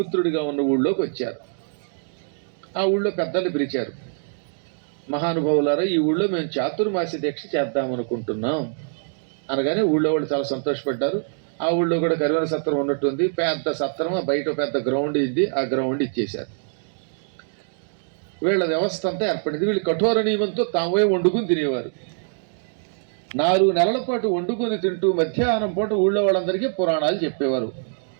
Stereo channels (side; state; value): left; silent; digital silence